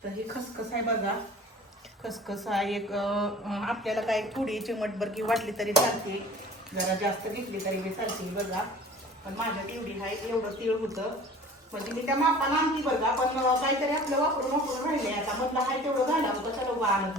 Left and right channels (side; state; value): both; normal; correlation 0.45